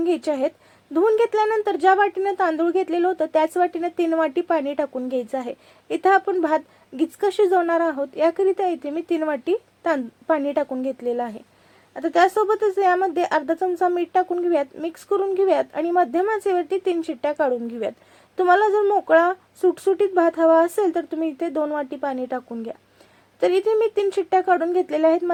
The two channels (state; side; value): identical; both; correlation 1.00